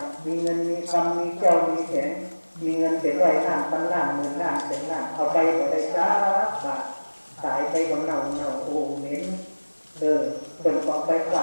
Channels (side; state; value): both; inverted; correlation -1.00